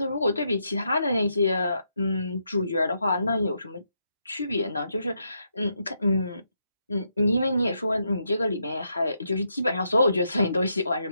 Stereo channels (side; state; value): both; inverted; correlation -0.80